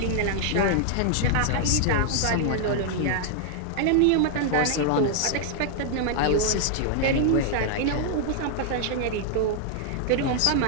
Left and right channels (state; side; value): different; both; correlation -0.01